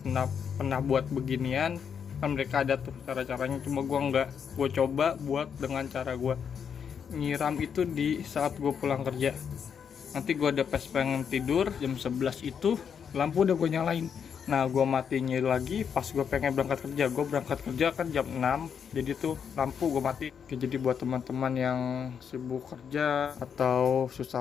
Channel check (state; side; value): quieter; right; 7.3 dB